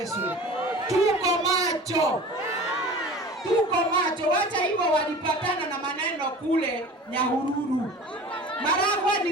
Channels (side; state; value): both; normal; correlation 0.39